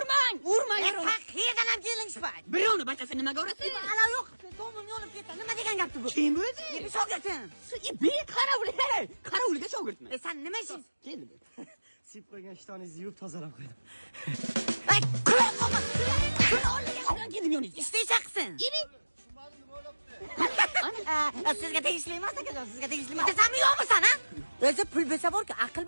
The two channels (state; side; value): inverted; both; correlation -1.00